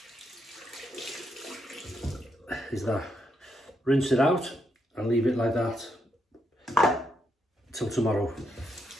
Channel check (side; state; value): both; normal; correlation 0.79